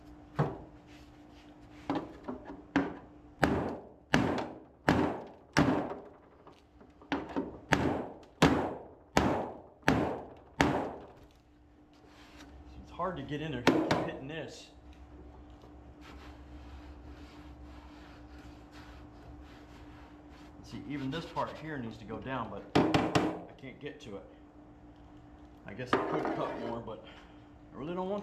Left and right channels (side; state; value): both; identical; correlation 1.00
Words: It's hard to get in there. Keep hitting this. See, even this part here needs to go down, but I can't get to it. I guess I could cut more, but I really don't